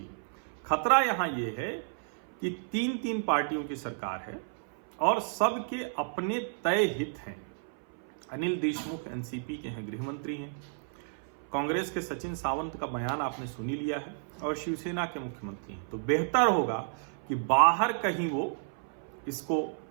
खतरा यहां यह है कि 3 पार्टियों की सरकार है और सबके अपने तय हित हैं। अनिल देशमुख एनसीपी के हैं, गृह मंत्री हैं। कांग्रेस के सचिन सावंत का बयान आपने सुन ही लिया है और शिवसेना के मुख्यमंत्री हैं, तो बेहतर होगा कि बाहर कहीं वो इसको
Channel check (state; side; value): silent; left; 57 dB below the other